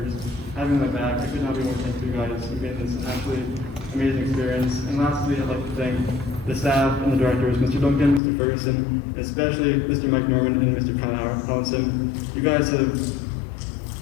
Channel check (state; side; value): drops out; right; at 8.2 s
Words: just having my back. I could not be more thankful to you guys. You made this an absolutely amazing experience. And lastly, I'd like to thank the staff and the directors, Mr. Duncan, Mr. Ferguson, and especially Mr. Mike Norman and Mr. Kyle Collinson. You guys have